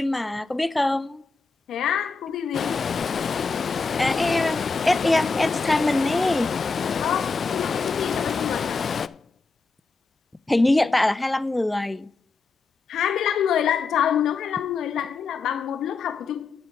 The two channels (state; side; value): quieter; right; 4.2 dB